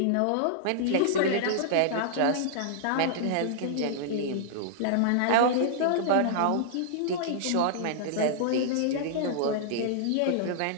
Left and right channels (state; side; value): different; both; correlation -0.01